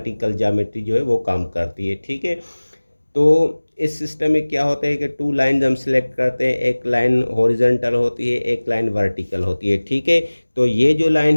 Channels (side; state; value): both; inverted; correlation -1.00